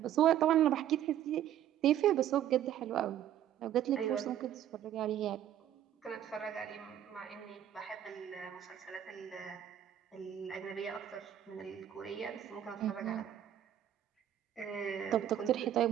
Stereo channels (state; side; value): quieter; left; 11.0 dB